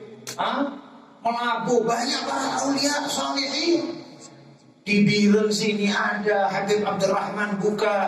Melabu, banyak para aulia salihin. Di Biren sini ada Habib Abdurrahman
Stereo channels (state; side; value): identical; both; correlation 1.00